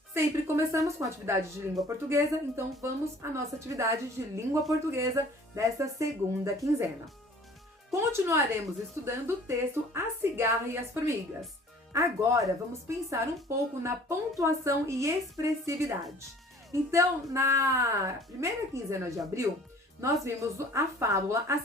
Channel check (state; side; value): normal; both; correlation 0.51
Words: Sempre começamos com a atividade de língua portuguesa, então vamos à nossa atividade de língua portuguesa desta segunda quinzena. Continuaremos estudando o texto A Cigarra e as Formigas. Agora vamos pensar um pouco na pontuação e expressividade. Então, na primeira quinzena de abril, nós vimos a fábula A